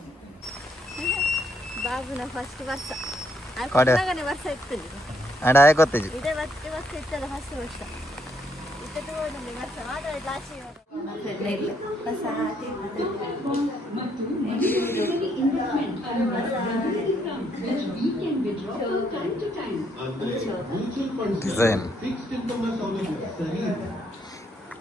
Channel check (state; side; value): normal; both; correlation 0.72